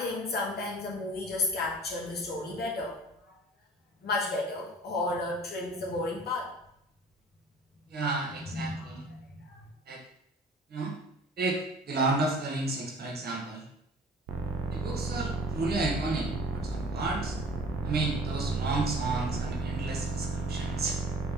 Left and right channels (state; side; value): normal; both; correlation 0.47